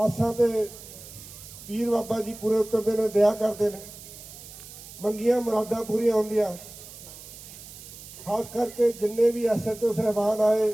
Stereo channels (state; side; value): noise; right; hiss, 16 dB below the sound